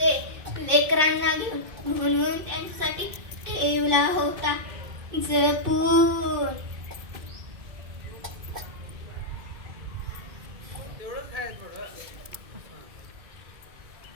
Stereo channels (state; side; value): late; left; 2.6 ms